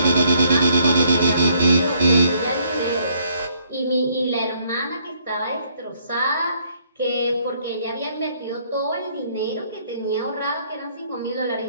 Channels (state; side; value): inverted; both; correlation -0.67